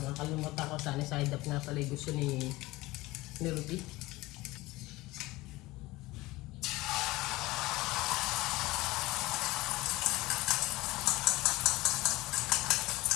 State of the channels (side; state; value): right; quieter; 19.9 dB